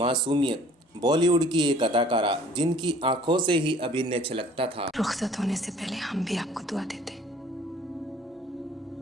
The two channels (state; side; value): normal; both; correlation 0.53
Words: बॉलीवुड की एक अदाकारा जिनकी आंखों से ही अभिनय छलकता था। रुखसत होने से पहले हम भी आपको दुआ देते